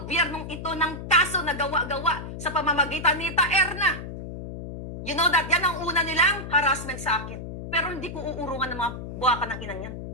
ito ng kaso na gawa-gawa sa pamamagitan ni Erna. You know that? Yan ang una nilang harassment sa akin. Pero hindi ko uurungan ng mga buwakan ng inang yan.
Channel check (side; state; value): left; noise; hum, 9 dB below the sound